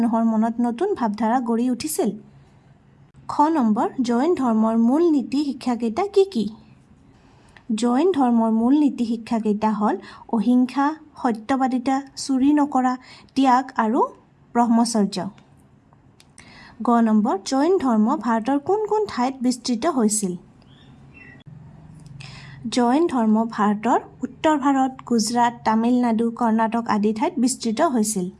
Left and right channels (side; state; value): both; identical; correlation 1.00